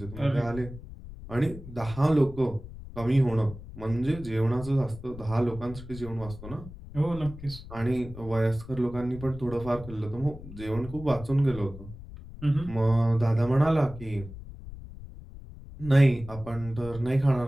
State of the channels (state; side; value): noise; left; rumble, 14 dB below the sound